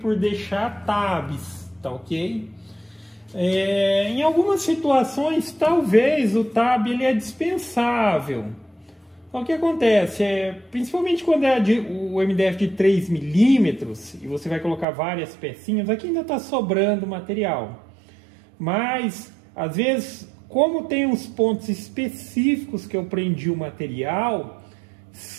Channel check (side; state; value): left; drops out; at 14.9 s